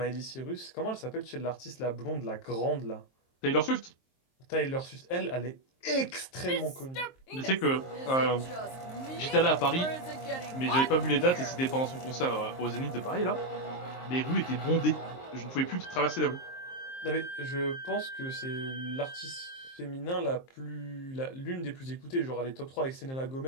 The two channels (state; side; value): late; right; 23 ms